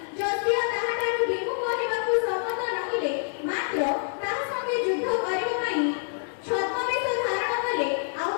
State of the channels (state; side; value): silent; right; digital silence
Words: ଯଦିଓ ତାହାଠାରୁ ବିମୁଖ ହେବାକୁ ସମ୍ମତ ନହେଲେ, ମାତ୍ର ତାହା ସଙ୍ଗେ ଯୁଦ୍ଧ କରିବା ପାଇଁ ଛଦ୍ମବେଶ ଧାରଣ କଲେ, ଆଉ